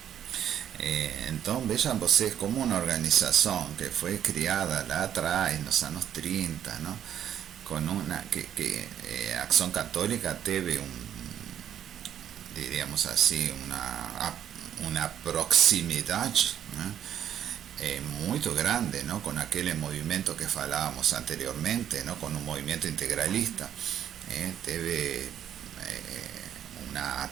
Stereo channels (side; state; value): left; quieter; 9.9 dB